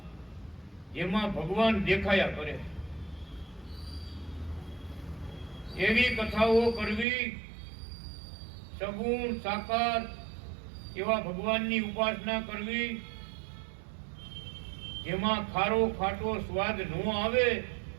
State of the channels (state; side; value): drops out; left; at 7.1 s